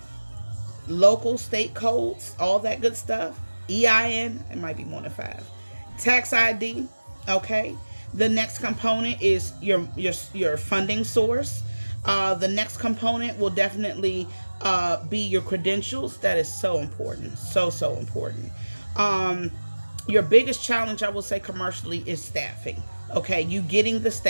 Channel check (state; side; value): inverted; both; correlation -1.00